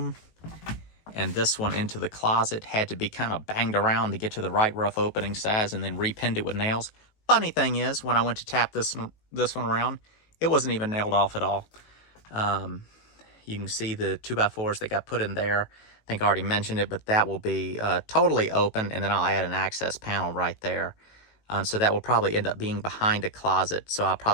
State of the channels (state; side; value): late; right; 19 ms